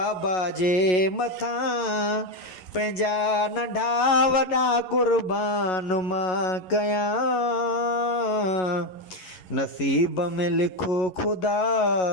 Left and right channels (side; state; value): right; late; 11 ms